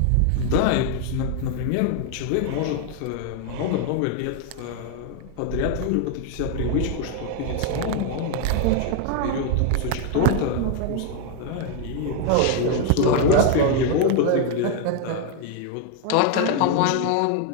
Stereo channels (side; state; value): both; different; correlation 0.00